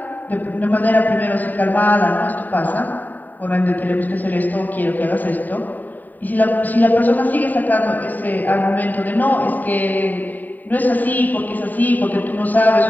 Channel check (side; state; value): right; late; 0.086 ms